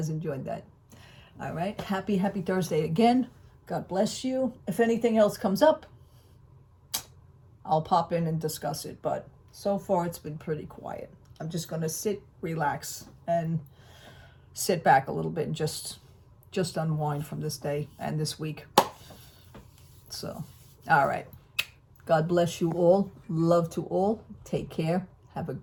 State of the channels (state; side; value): identical; both; correlation 1.00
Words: enjoyed that. All right. Happy Thursday again. God bless you. If anything else comes up, I'll pop in and discuss it. But so far, it's been pretty quiet. I'm just going to sit, relax, and sit back a little bit and just unwind from this day and this week. So, all right. God bless you all. Love to all. Take care. Have a